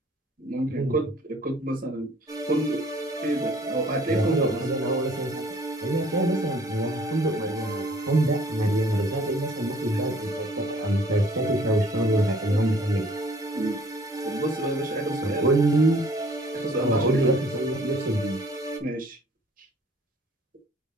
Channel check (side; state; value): both; normal; correlation 0.57